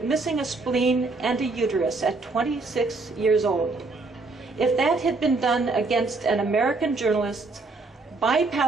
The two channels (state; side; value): quieter; left; 3.6 dB